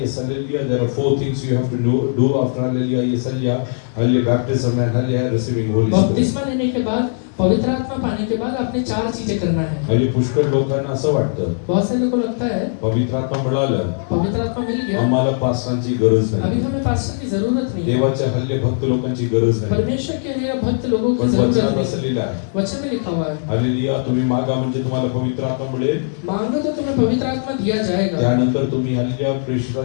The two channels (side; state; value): right; silent; digital silence